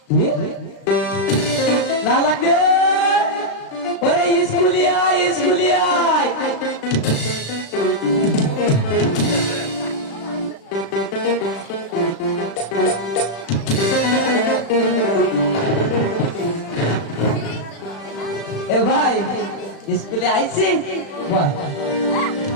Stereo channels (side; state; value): right; late; 36 ms